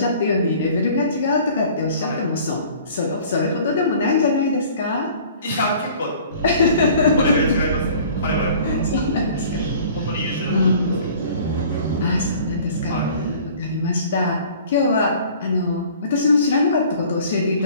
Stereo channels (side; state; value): both; inverted; correlation -0.49